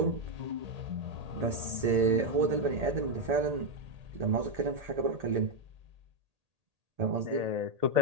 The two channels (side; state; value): left; late; 1.8 ms